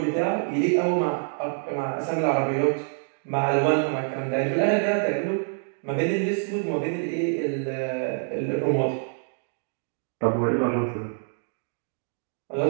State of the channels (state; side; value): silent; left; digital silence